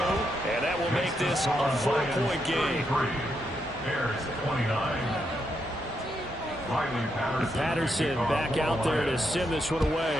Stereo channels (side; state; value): both; normal; correlation 0.80